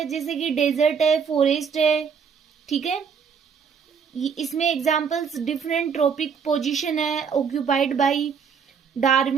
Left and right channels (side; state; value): left; quieter; 6.5 dB